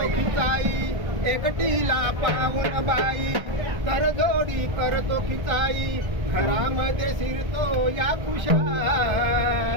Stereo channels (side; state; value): left; late; 1.5 ms